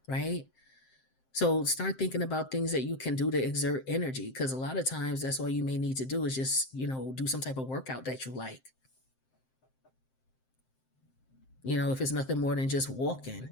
right? So start thinking about things that you can do to exert energy, because a lot of times that's all you may need to do is just, do some type of workout that you like. If it's nothing more than just walking,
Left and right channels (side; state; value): right; late; 7.7 ms